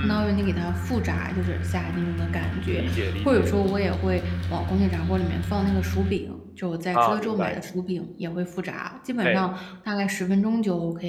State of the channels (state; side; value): identical; both; correlation 1.00